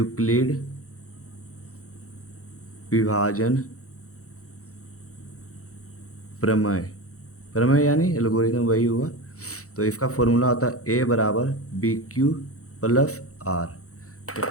विभाजन प्रमेय, प्रमेय यानी एल्गोरिदम वही हुआ। तो इसका फॉर्मूला होता है ए बराबर बी क्यू प्लस आर। तो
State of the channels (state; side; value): late; right; 0.65 ms